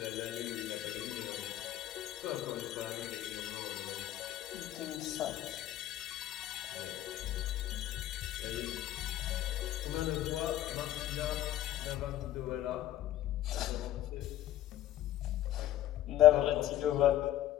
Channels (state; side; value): quieter; right; 13.5 dB